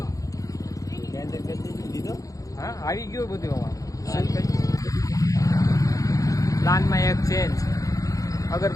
દીધો હા આવી ગયું બધું અમારું. પ્લાનમાં એક ચેન્જ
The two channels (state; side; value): late; right; 0.17 ms